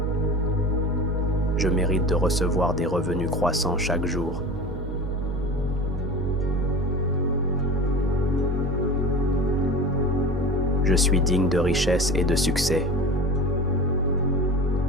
Je mérite de recevoir des revenus croissants chaque jour. Je suis digne de richesse et de succès.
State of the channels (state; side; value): normal; both; correlation 0.34